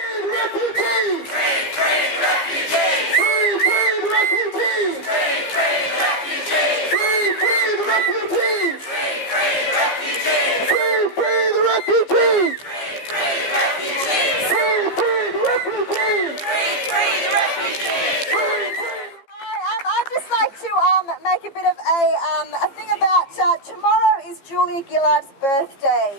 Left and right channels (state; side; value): late; right; 15 ms